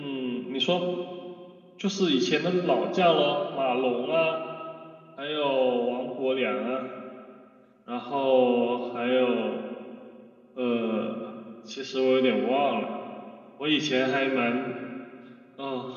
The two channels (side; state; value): both; identical; correlation 1.00